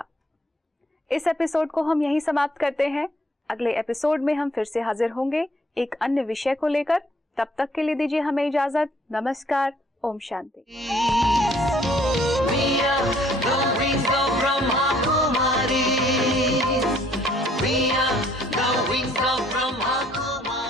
इस एपिसोड को हम यहीं समाप्त करते हैं। अगले एपिसोड में हम फिर से हाजिर होंगे एक अन्य विषय को लेकर। तब तक के लिए दीजिए हमें इजाजत। नमस्कार। ओम शांति।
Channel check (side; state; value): both; normal; correlation 0.63